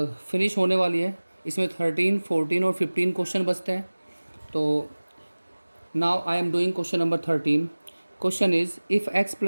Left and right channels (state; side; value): inverted; both; correlation -1.00